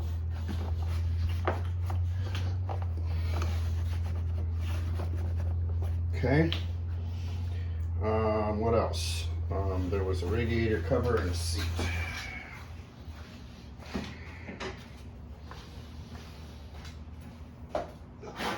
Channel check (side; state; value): both; identical; correlation 1.00